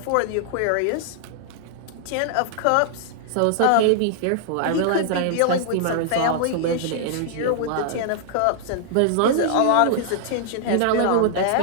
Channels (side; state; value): both; different; correlation -0.01